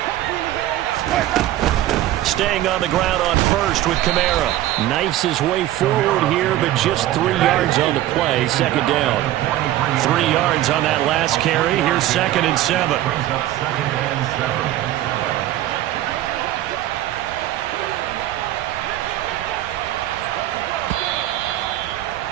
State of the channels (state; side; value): quieter; left; 14.1 dB